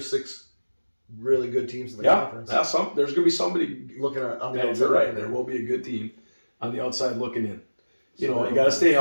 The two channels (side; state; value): both; inverted; correlation -1.00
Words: 6 really good teams in the conference, there's going to be somebody looking at on the outside. You're right. There will be a good team on the outside looking in. You got to stay